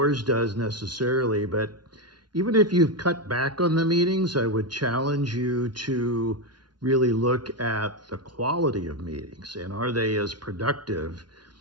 does necessarily. But even if you've cut back on the meetings, I would challenge you to really look at the quality of meetings and are they as productive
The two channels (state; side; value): late; left; 0.70 ms